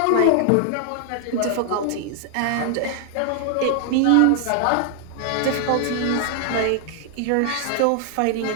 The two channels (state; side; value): different; both; correlation 0.00